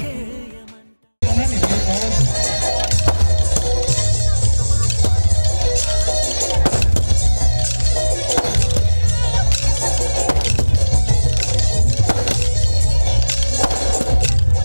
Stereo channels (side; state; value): both; inverted; correlation -1.00